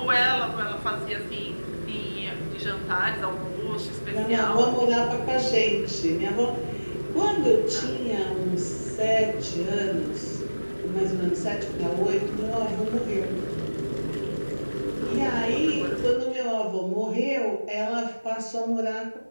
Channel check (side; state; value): both; inverted; correlation -1.00